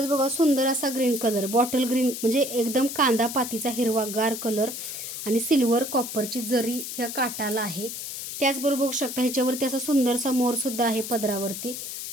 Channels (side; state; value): left; noise; hiss, 7 dB below the sound